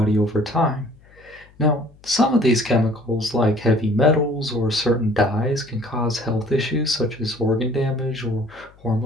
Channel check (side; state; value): left; noise; hum, 27 dB below the sound